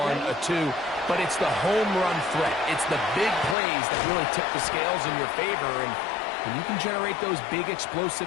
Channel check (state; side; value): drops out; right; at 3.6 s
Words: a 2. But it's the home run threat. It's the big plays that really tip the scales in your favor. And when you can generate those big